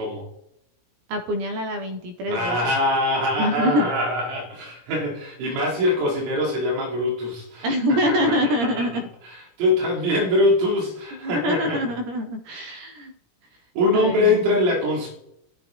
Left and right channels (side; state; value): left; late; 17 ms